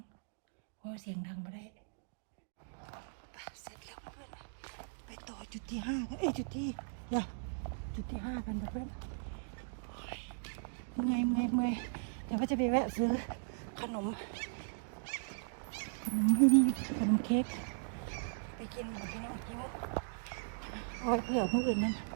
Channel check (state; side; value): silent; left; digital silence